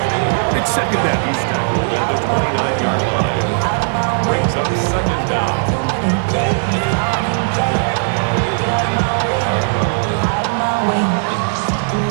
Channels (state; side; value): silent; left; 67 dB below the other